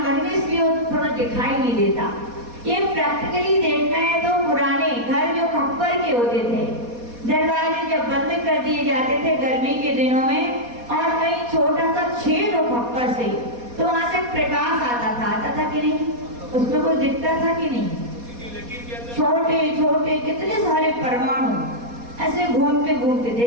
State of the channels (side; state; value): left; late; 4.2 ms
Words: बन गए इसलिए थोड़ा दिखाई नहीं देता। ये प्रैक्टिकली देखना है तो पुराने घर जो खप्पर के होते थे, दरवाजे जब बंद कर दिए जाते थे गर्मी के दिनों में और कहीं छोटा सा छेद हो खप्पर से, तो वहां से प्रकाश आता था कि नहीं? उसमें कुछ दिखता था कि नहीं? छोटे छोटे कितने सारे परमाणु ऐसे घूमते घूमते